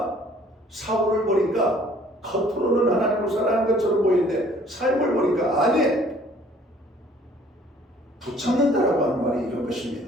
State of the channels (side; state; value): both; normal; correlation 0.56